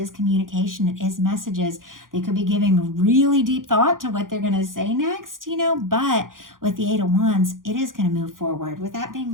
communication. It is messages. They could be giving really deep thought to what they're going to say next, but with the Eight of Wands, it is going to move forward. With that being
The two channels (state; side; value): late; left; 0.90 ms